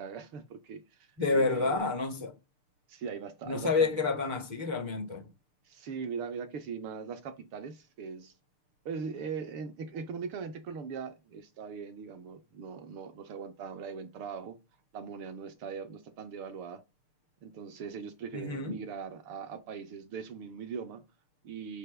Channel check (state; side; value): late; left; 6.7 ms